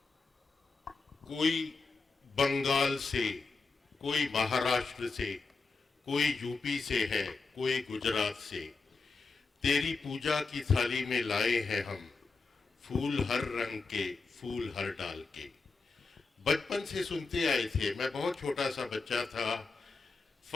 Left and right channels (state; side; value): quieter; right; 4.2 dB